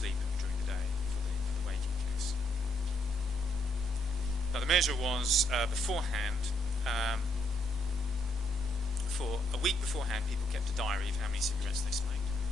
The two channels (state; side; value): normal; both; correlation 0.74